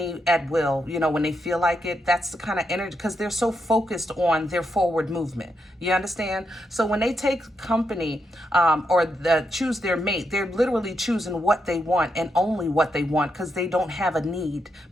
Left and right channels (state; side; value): normal; both; correlation 0.82